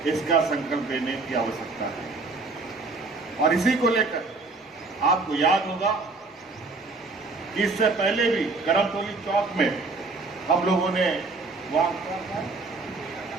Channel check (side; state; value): left; quieter; 3.7 dB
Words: इसका संकल्प लेने की आवश्यकता है। और इसी को लेकर आपको याद होगा कि इससे पहले भी करमतौली चौक में हम लोगों ने वहां